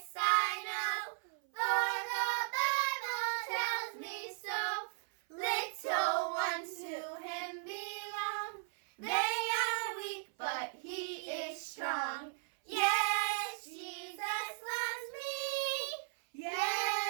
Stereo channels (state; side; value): silent; left; 53 dB below the other